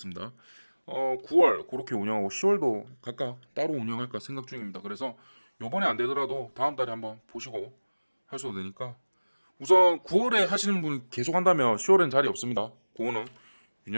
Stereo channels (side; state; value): both; inverted; correlation -1.00